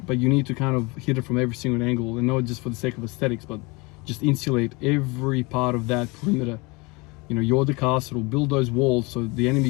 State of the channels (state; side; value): quieter; right; 26.3 dB